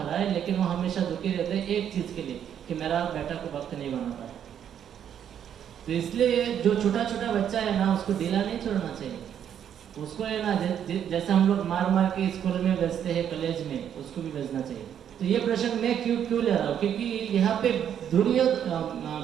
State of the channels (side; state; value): left; quieter; 9.2 dB